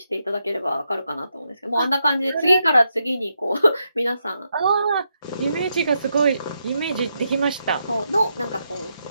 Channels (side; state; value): both; inverted; correlation -0.82